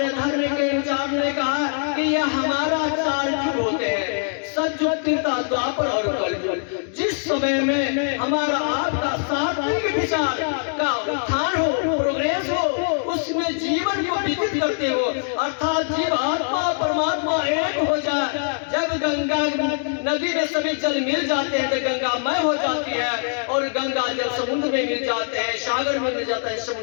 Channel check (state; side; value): silent; right; digital silence